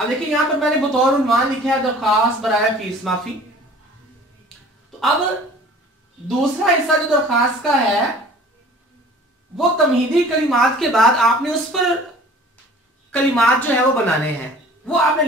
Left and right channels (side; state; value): both; normal; correlation 0.47